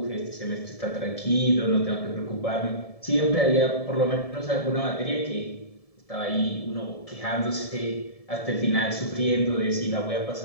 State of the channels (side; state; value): right; late; 1.7 ms